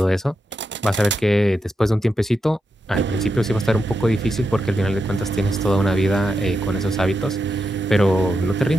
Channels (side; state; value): both; normal; correlation 0.86